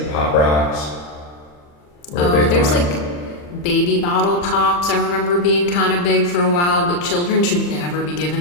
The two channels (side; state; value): right; late; 40 ms